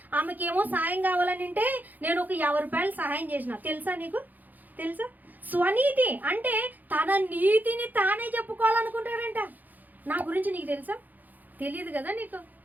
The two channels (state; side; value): late; left; 0.083 ms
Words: ఆమెకి ఏమో సాయం కావాలని ఉంటే నేను ఒక 50 రూపాయలు సహాయం చేసిన, తెలుసా నీకు, తెలుసా. స్వనీతి అంటే తన నీతిని తానే చెప్పుకోవాలనుకుంటాడంట. నా గురించి నీకు తెలుసా, తెలియదు కదా నీకు